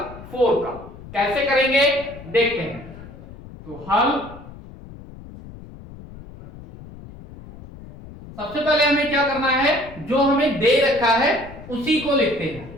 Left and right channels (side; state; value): left; noise; rumble, 16 dB below the sound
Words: 4 का। कैसे करेंगे देखते हैं। तो हल सबसे पहले हमें क्या करना है, जो हमें दे रखा है उसी को लिखते हैं।